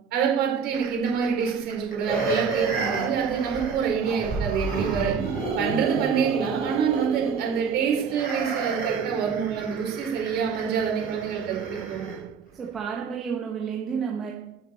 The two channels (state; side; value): quieter; left; 6.1 dB